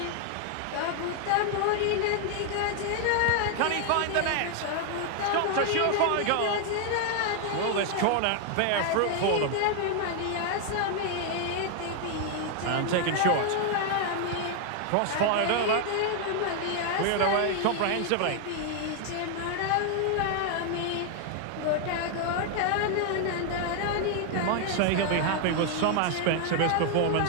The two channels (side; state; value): both; different; correlation 0.00